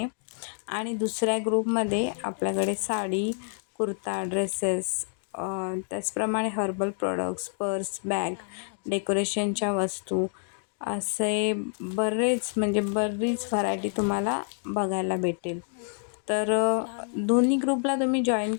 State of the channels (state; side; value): silent; right; 57 dB below the other